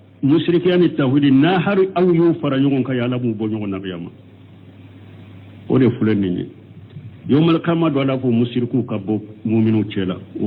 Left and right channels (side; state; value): both; identical; correlation 1.00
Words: mushrikiyani tawhid na har aw yu fara nyon ka yala mu bo nyon na biyama o de fulenni yomal kama do la fo mushriku ka bo mu'minu cela